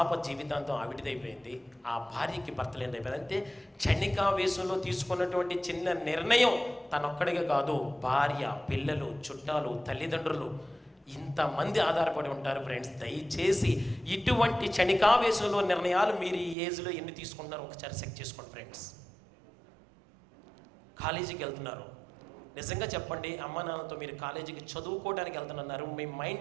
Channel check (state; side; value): drops out; left; at 16.6 s